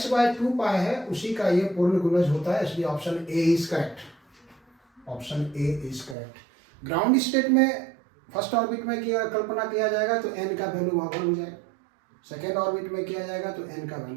बाय 2 पाई है उसी का ये पूर्ण गुणज होता है, इसलिए option A is correct, option A is correct. Ground state में फर्स्ट ऑर्बिट में कल्पना किया जाएगा तो n का वैल्यू वहाँ पर हो जाएगा, सेकेंड ऑर्बिट में किया जाएगा तो n का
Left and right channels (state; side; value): drops out; left; at 6.2 s